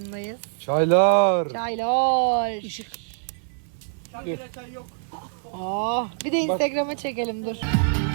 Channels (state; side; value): silent; left; 62 dB below the other